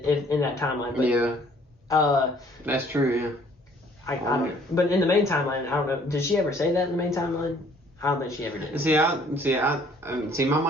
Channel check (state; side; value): normal; both; correlation 0.59